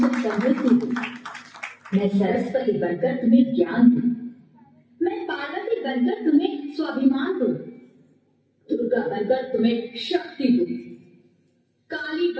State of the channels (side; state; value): both; identical; correlation 1.00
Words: समृद्धि दूं, मैं सरस्वती बनकर तुम्हें ज्ञान दूं, मैं पार्वती बनकर तुम्हें स्वाभिमान दूं, दुर्गा बनकर तुम्हें शक्ति दूं, काली